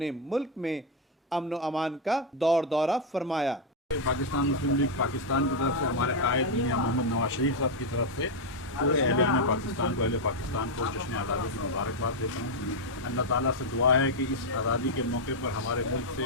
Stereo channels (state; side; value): normal; both; correlation 0.02